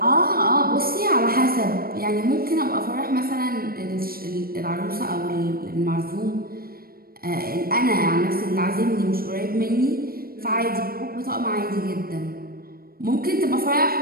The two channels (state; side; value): late; left; 0.43 ms